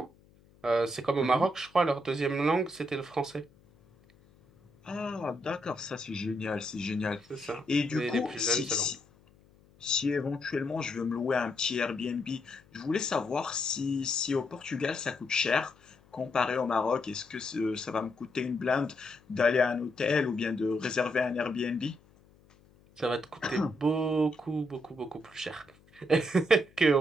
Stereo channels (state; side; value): noise; left; hum, 29 dB below the sound